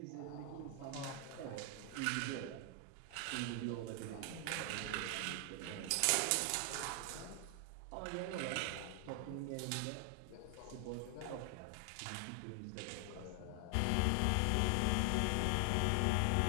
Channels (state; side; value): different; both; correlation 0.00